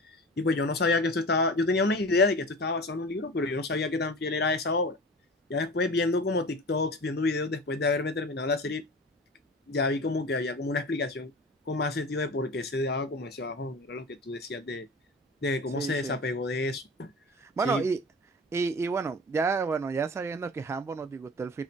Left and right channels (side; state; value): both; normal; correlation 0.35